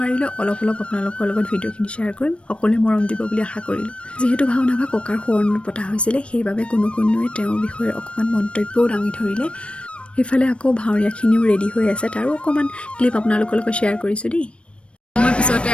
অলপ আপোনালোকৰ লগত ভিডিঅ'খিনি শ্বেয়াৰ কৰিম। সকলোৱে মৰম দিব বুলি আশা কৰিলোঁ। যিহেতু ভাওনাভাগ ককাৰ সোঁৱৰণত পতা হৈছিলে, সেইবাবে কোনোৱে তেওঁৰ বিষয়ে অকণমান মন্তব্যও দাঙি ধৰিলে। সেইফালে আকৌ ভাৱৰীয়াখিনিও ৰেডি হৈ আছে, তাৰো অকণমান ক্লিপ আপোনালোকৰ লগত শ্বেয়াৰ কৰিছোঁ দেই। মই পিছতে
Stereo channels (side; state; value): right; late; 0.059 ms